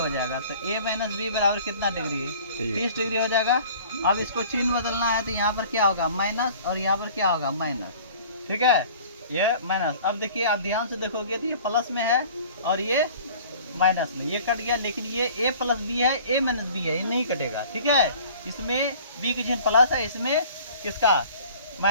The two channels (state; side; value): inverted; both; correlation -0.48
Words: जाएगा, तो A - B बराबर कितना डिग्री है 30 डिग्री हो जाएगा। अब इसको चिन्ह बदलना है तो यहाँ पर क्या होगा माइनस और यहाँ पर क्या होगा माइनस। ठीक है, ये माइनस। अब देखिए आप ध्यान से देखोगे तो ये प्लस में है और ये माइनस में, ये कट गया, लेकिन ये A + B है A - B है, ये नहीं कटेगा। ठीक है, इसमें B की चिन्ह प्लस है, इसमें किसका